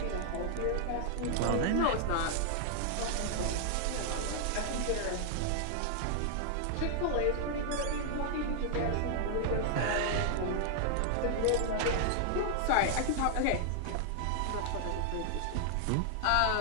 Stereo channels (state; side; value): different; both; correlation 0.00